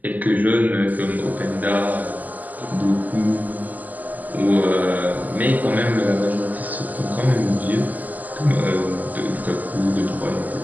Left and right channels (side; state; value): left; late; 0.081 ms